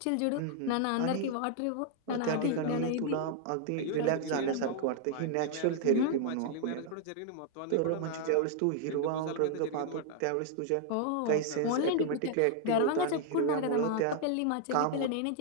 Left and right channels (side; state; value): both; different; correlation 0.00